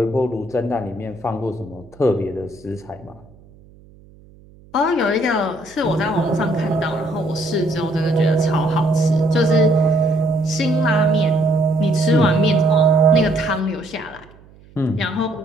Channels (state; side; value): noise; right; hum, 25 dB below the sound